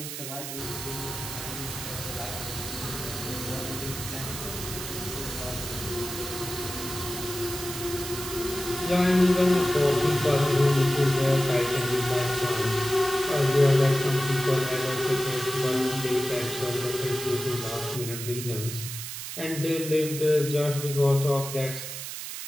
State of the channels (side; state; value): right; noise; hiss, 7 dB below the sound